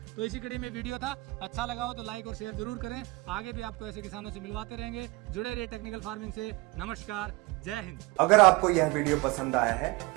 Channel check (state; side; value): quieter; left; 23.0 dB